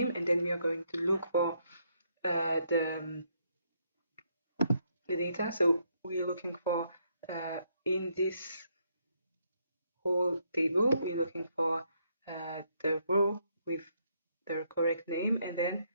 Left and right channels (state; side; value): inverted; both; correlation -0.74